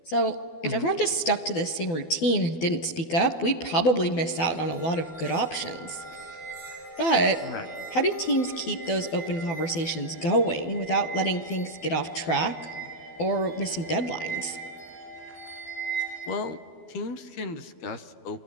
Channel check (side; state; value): right; late; 12 ms